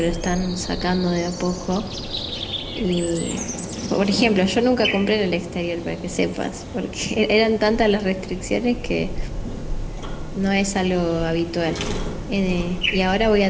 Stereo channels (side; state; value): both; identical; correlation 1.00